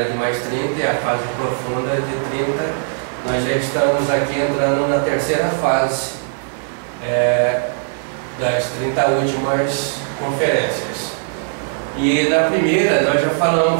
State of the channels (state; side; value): silent; left; digital silence